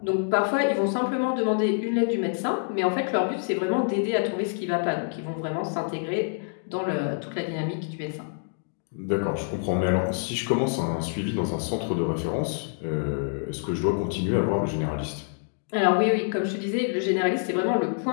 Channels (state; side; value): silent; right; digital silence